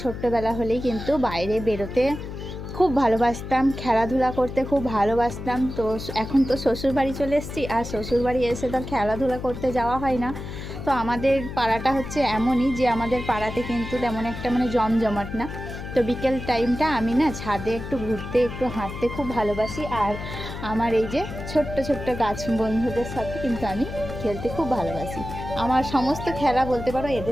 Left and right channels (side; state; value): left; noise; hum, 9 dB below the sound